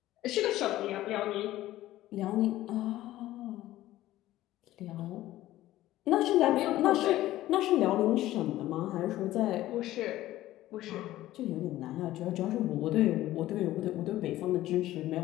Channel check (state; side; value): quieter; right; 15.1 dB